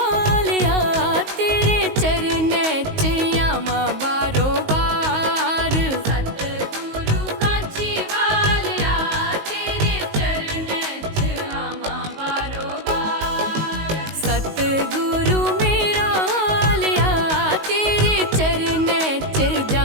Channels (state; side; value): late; left; 19 ms